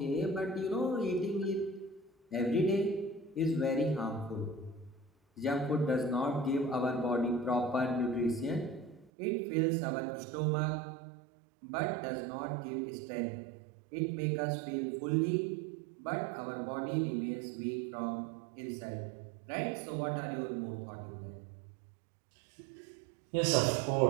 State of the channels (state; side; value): drops out; left; at 9.1 s